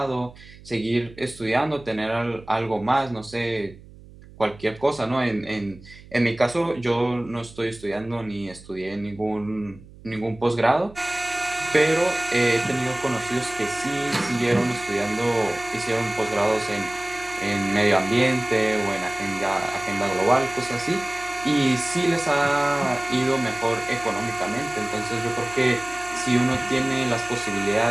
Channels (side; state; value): right; noise; hum, 20 dB below the sound